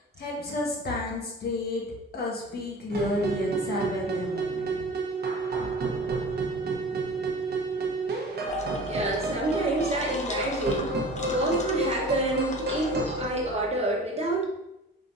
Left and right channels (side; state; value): both; normal; correlation 0.40